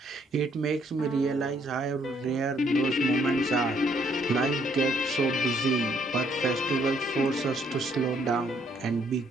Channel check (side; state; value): both; normal; correlation 0.68